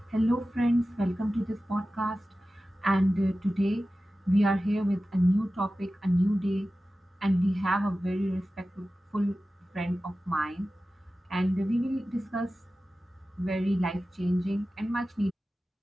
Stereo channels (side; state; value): both; normal; correlation 0.95